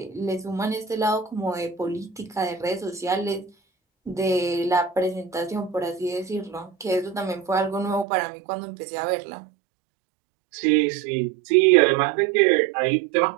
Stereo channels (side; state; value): left; drops out; at 8.1 s